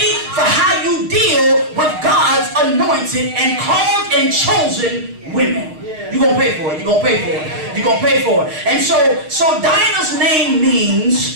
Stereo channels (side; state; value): left; late; 6.5 ms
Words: for how you deal with God's anointed and called and chosen women. You're going to pay for it. You're going to pay for it. You're going to pay for it. And so Dinah's name